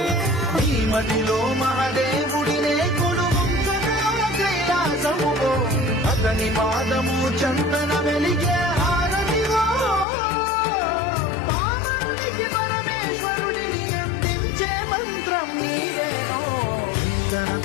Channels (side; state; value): right; drops out; at 10.1 s